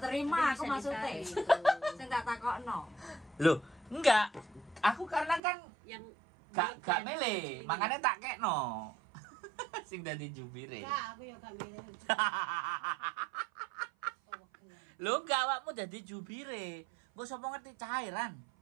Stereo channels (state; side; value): drops out; left; at 5.4 s